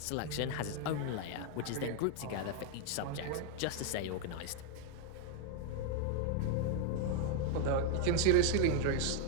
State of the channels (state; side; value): different; both; correlation 0.00